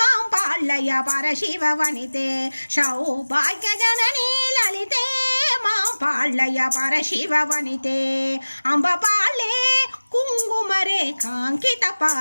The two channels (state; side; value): inverted; both; correlation -1.00